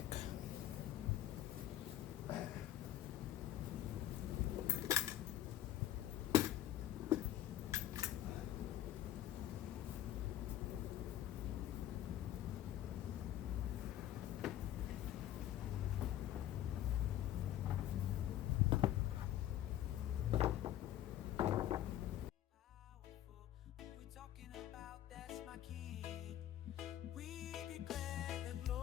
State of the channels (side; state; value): right; quieter; 12.4 dB